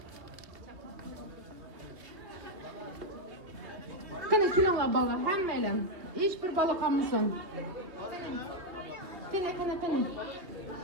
Qani kelinglar bolalar, hammalar. Hech bir bola qolmasin. Qani.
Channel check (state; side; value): late; left; 2.6 ms